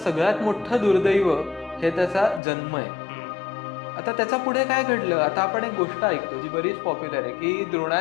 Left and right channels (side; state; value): right; drops out; at 2.4 s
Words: मोठं दुर्दैव हे त्याचा जन्म आहे. आता त्याच्या पुढे काय घडलं, आता आपण एक गोष्ट ऐकतो जी बरीच पॉप्युलर आहे, की